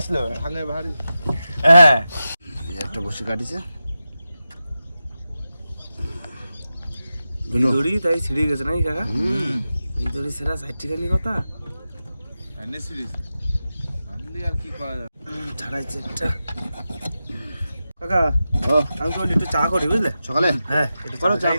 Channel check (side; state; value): both; inverted; correlation -0.92